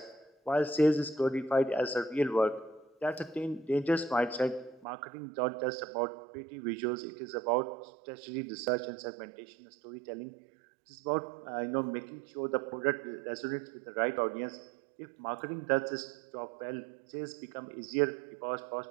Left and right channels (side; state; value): left; drops out; at 4.9 s